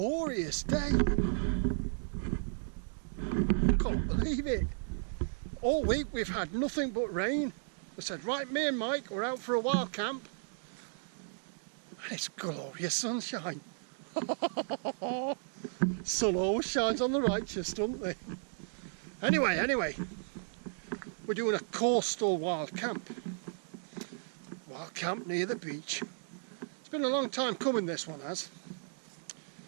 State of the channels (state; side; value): silent; left; digital silence